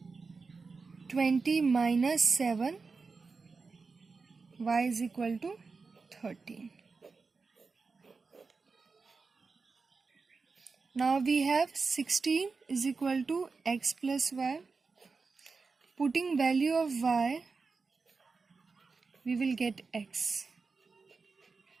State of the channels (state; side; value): quieter; left; 4.5 dB